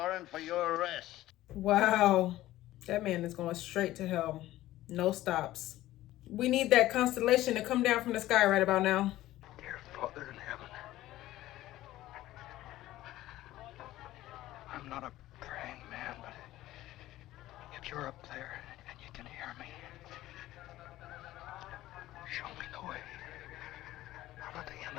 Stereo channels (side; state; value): right; quieter; 15.4 dB